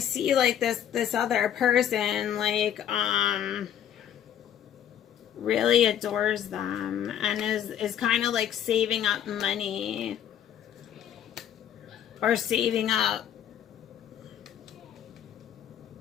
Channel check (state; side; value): quieter; right; 9.9 dB